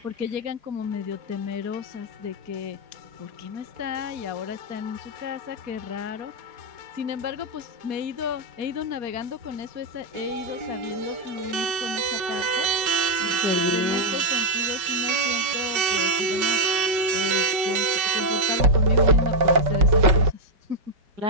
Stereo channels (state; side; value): late; left; 5.3 ms